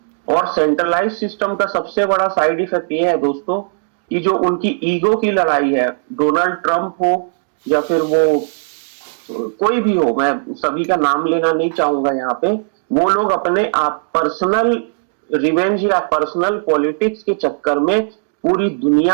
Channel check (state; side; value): silent; left; digital silence